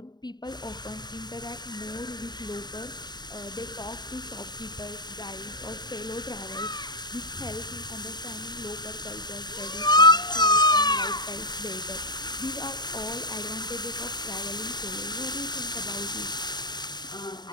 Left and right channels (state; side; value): late; right; 0.20 ms